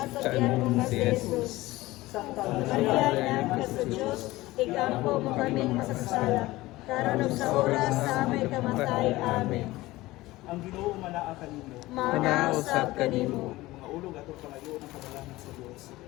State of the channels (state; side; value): quieter; right; 18.6 dB